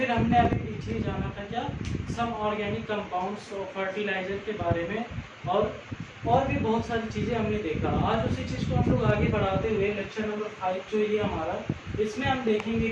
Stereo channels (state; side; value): identical; both; correlation 1.00